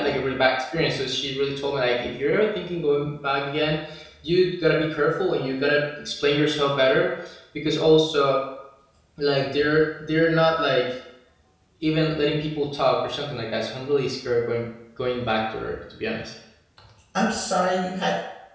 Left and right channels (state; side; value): identical; both; correlation 1.00